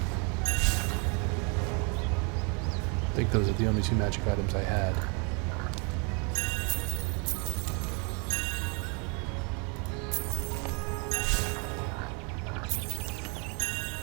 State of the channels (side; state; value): left; quieter; 34.4 dB